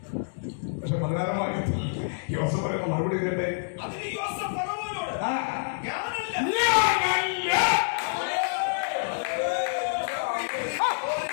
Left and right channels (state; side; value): silent; right; digital silence